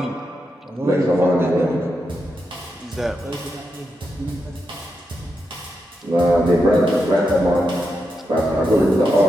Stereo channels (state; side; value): normal; both; correlation 0.85